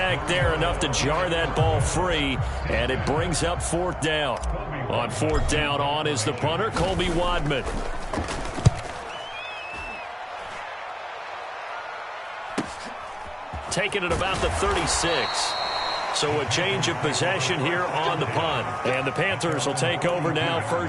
there enough to jar that ball free, and it brings up 4th down. On 4th down, on is the punter, Colby Wadman. Taking it about the 36. So a change of possession here on the punt. And the Panthers will take over now,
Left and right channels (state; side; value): identical; both; correlation 1.00